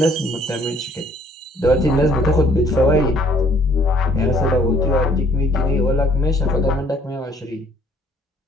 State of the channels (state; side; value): normal; both; correlation 0.60